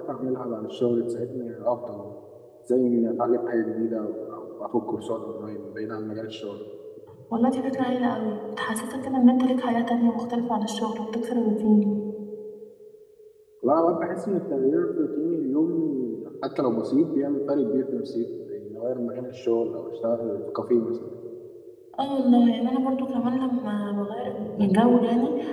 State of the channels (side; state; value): both; identical; correlation 1.00